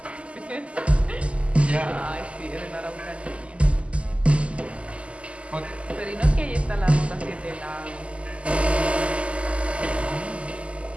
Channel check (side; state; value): left; late; 0.058 ms